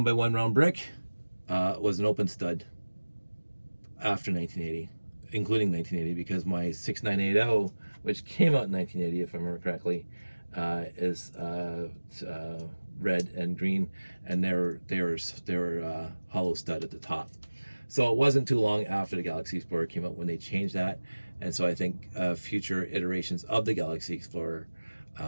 round brick was an open stud after 1980, including 1980, because my 6980, which came out in 1980, if I remember correctly, is red and green, and they were hollow stud at the top. So it wasn't too long after the Galaxy Explorer came out when they changed that, and so I think future iterations of the Galaxy Explorer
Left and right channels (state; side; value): inverted; both; correlation -1.00